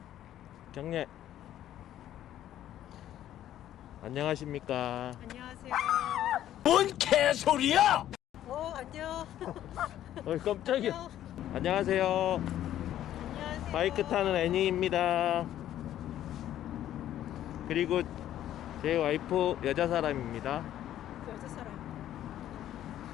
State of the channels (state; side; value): quieter; right; 12.1 dB